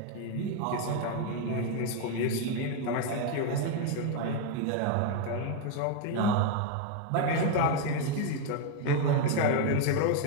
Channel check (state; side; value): different; both; correlation 0.01